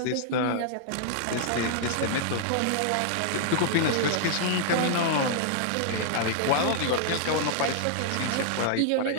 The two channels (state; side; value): different; both; correlation -0.01